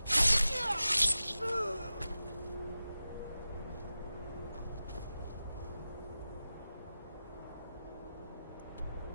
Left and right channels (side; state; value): both; inverted; correlation -0.94